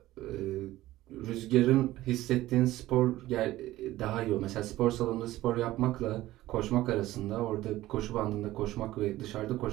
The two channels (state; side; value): quieter; left; 16.0 dB